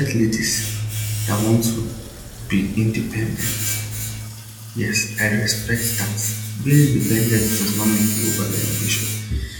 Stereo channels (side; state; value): both; identical; correlation 1.00